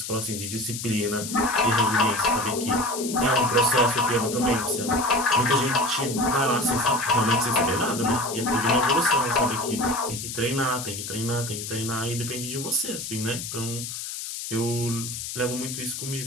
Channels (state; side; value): noise; left; hiss, 7 dB below the sound